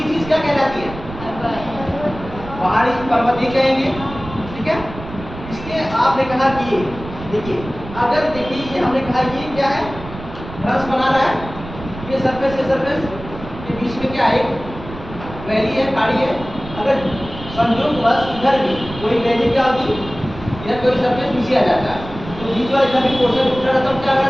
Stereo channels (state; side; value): noise; right; rumble, 13 dB below the sound